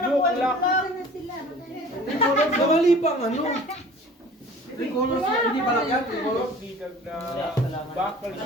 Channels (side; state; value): both; normal; correlation 0.46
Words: yung black! Na sila. Namali pang ano. Three colors. Hindi pala yan. Three colors. Bakal